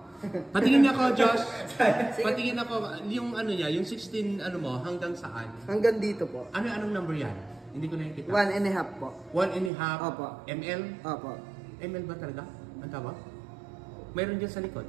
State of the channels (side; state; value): left; drops out; at 9.7 s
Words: Patingin ako, Josh. Patingin ako, yung ano niya, yung 16 ano mo, hanggang saan? Hanggang dito po. Anong number yan? Hindi ko nakikita. 1.5 po. 1.5 Opo. ml? Opo. ml ba talaga? Ang tawag? Mayroon dyan sa likod.